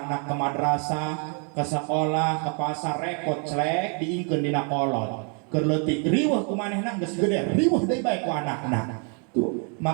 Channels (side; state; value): left; quieter; 39.6 dB